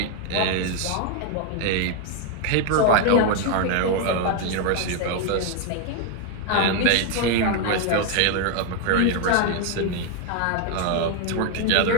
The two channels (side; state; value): both; different; correlation 0.00